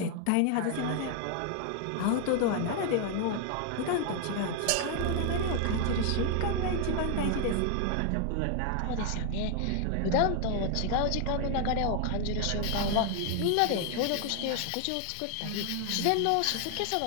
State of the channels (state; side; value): different; both; correlation 0.00